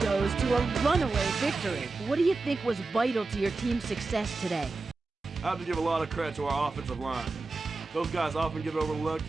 to a runaway victory. What do you think was vital to your team's success today? I have to give a lot of credit to our offensive line. Those guys often get overlooked,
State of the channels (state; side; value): quieter; left; 3.7 dB